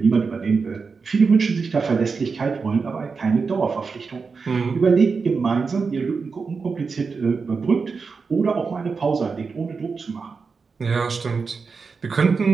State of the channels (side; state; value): left; quieter; 4.9 dB